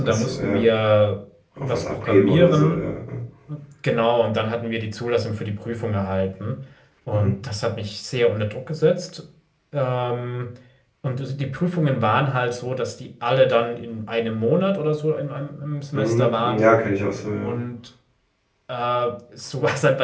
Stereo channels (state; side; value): identical; both; correlation 1.00